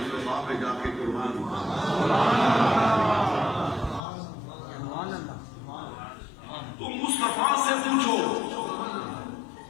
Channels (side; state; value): right; drops out; at 4.0 s